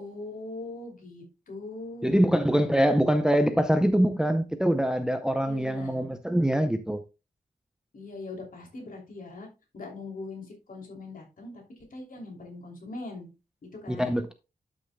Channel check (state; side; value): normal; both; correlation 0.94